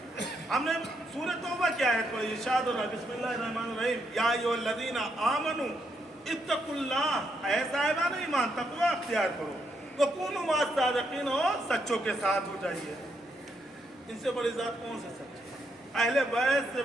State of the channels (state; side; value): normal; both; correlation 0.78